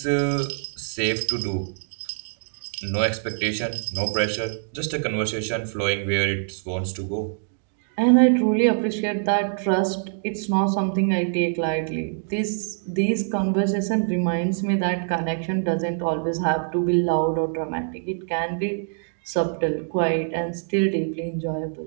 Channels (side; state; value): left; silent; digital silence